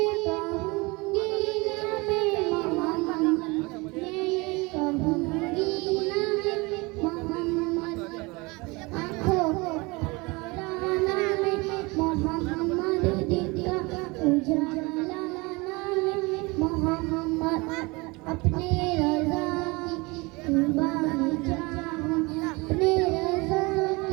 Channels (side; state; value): left; quieter; 25.4 dB